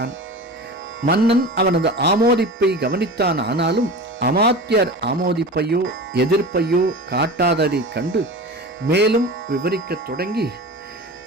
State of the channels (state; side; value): normal; both; correlation 0.32